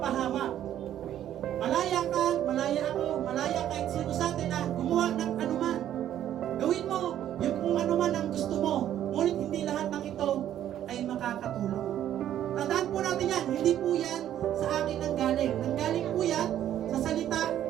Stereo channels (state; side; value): quieter; left; 11.3 dB